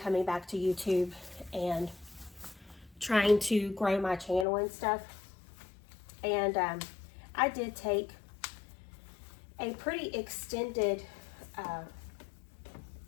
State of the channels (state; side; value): drops out; right; at 4.5 s